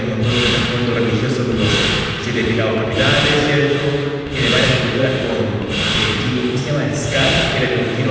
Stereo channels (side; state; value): both; identical; correlation 1.00